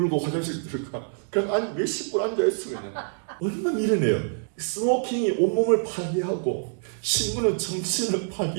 화장실 들어가. 그냥 몇십 분 앉아있어 그냥. 얼마나 미련해요. 스모킹이 온몸을 파괴하고 신문은 정신을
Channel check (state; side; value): silent; left; 61 dB below the other